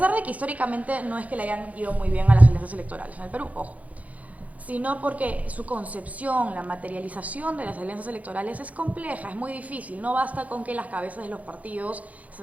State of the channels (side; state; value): left; late; 0.071 ms